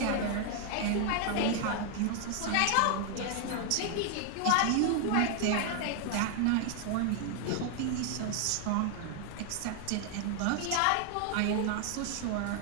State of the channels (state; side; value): different; both; correlation 0.00